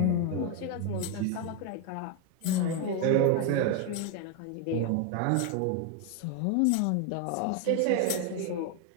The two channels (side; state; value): both; different; correlation 0.01